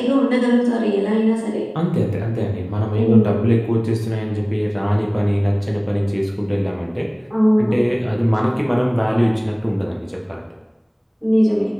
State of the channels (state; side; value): identical; both; correlation 1.00